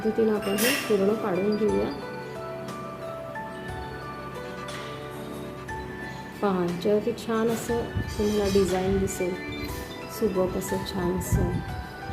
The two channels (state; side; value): identical; both; correlation 1.00